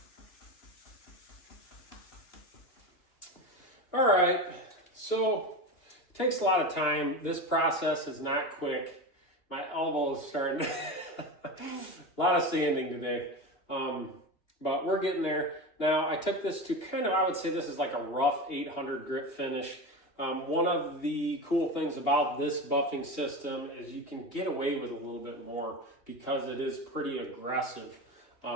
All right, so takes a lot of time. This process is not quick. My elbow is starting a lot of sanding today. But we're getting there. Now I took this to kind of, I would say this is like a rough 800 grit finish. One of the cool things about this buffing system is you can get away with a little bit more because it is pretty aggressive.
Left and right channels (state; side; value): late; right; 2.8 ms